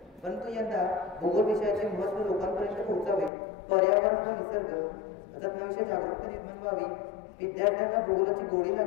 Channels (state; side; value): drops out; right; at 3.3 s